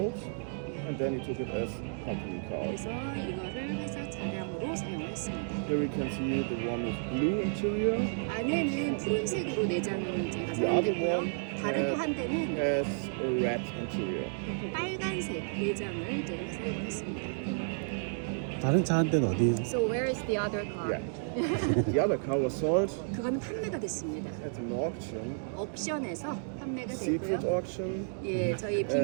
and then he took it as company cars. 그래서 이거를 회사 차량으로 사용을 했습니다. Here we can see the one with blue interior, 안에는 푸른색으로 내장을 제가 the other 사용했고요. one 다른 또 한 대는 has a red interior. 빨간색 내장을 제가 사용을 했습니다. 다른 차 한 대는 어디? So where is the other car? Yeah. The other car was sold 그거는 판매가 됐습니다. at an auction, 옥션에서 판매가 secret 됐고요. auction. 예, 저희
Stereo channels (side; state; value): left; silent; digital silence